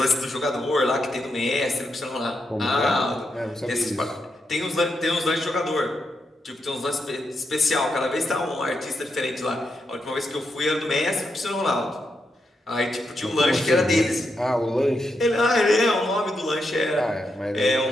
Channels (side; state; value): both; normal; correlation 0.83